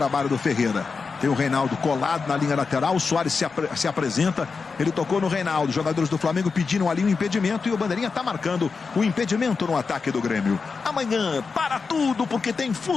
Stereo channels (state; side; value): quieter; right; 4.9 dB